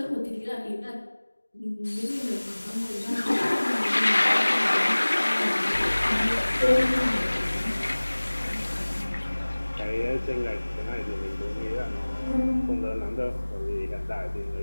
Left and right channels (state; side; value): inverted; both; correlation -1.00